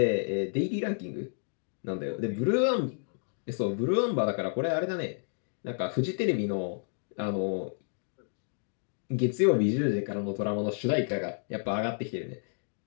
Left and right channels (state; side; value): silent; right; digital silence